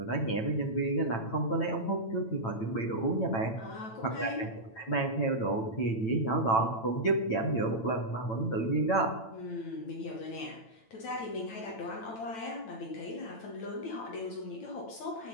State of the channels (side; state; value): right; late; 9.0 ms